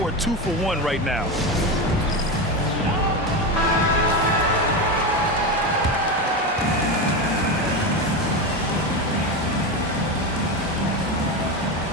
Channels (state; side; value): normal; both; correlation 0.17